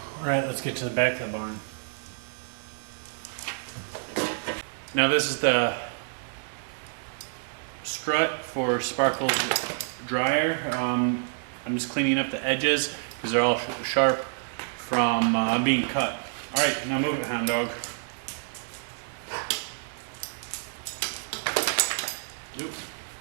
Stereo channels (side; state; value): left; silent; 59 dB below the other